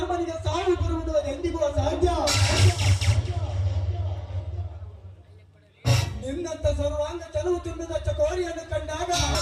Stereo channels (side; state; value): both; identical; correlation 1.00